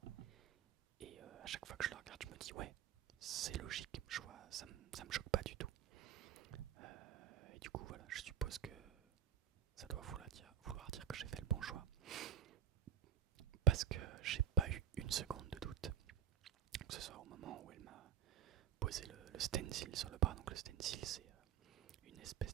Et à chaque fois que je le regarde, je me dis ouais, c'est logique, je vois, ça me choque pas du tout. Et du coup voilà, je suppose que ça doit vouloir dire que j'ai fait le bon choix. Parce que j'ai pas eu une seconde de doute. Que ce soit au moment où elle m'a posé le stencil sur le bras. Donc le stencil c'est une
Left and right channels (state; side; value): quieter; left; 8.7 dB